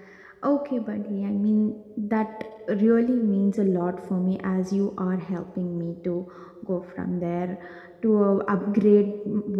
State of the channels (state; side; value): identical; both; correlation 1.00